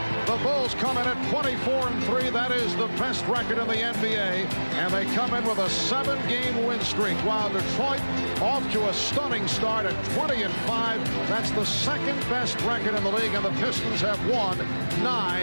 The Bulls come in at 24-3. That is the best record in the NBA. And they come in with a 7-game win streak, while Detroit off to a stunning start at 20-5. That's the second best record in the league, and the Pistons have won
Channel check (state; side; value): inverted; both; correlation -1.00